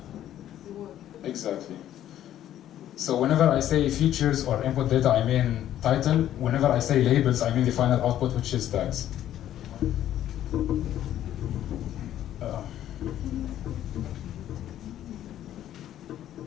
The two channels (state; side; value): quieter; right; 11.8 dB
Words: the work. Exactly. So whenever I say features or input data, I mean title. Whenever I say labels, I mean the final output, which is tags.